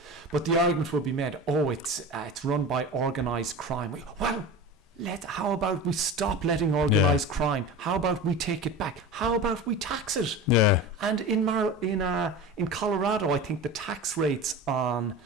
but the argument will be made, it's run by organised crime. Well, how about we stop letting organised crime? How about we take it back? How about we tax it? And in Colorado, I think the tax rates on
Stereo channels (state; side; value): normal; both; correlation 0.31